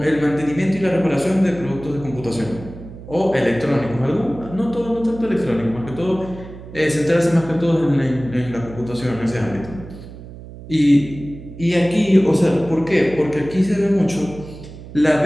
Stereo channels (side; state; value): right; noise; hum, 15 dB below the sound